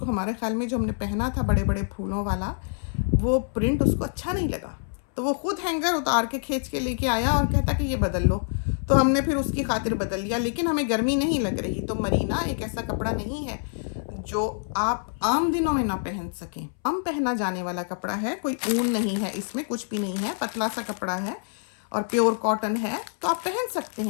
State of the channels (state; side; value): silent; right; 61 dB below the other